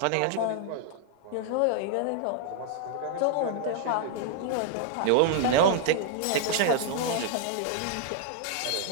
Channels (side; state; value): both; different; correlation 0.00